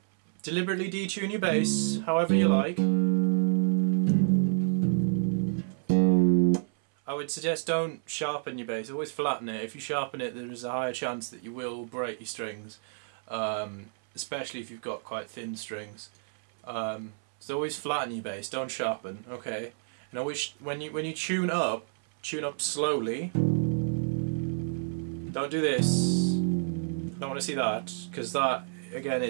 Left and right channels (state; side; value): silent; left; 58 dB below the other